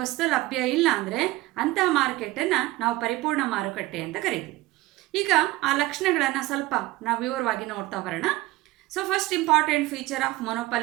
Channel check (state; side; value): quieter; left; 18.9 dB